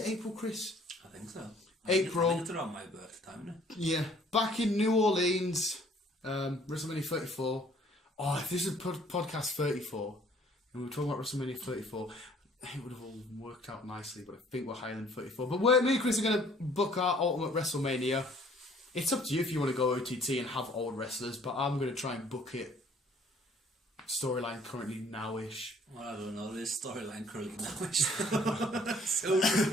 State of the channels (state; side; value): normal; both; correlation 0.58